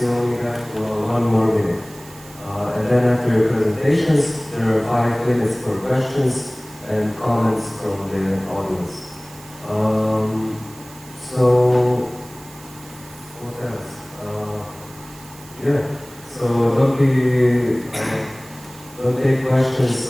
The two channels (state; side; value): noise; right; hiss, 20 dB below the sound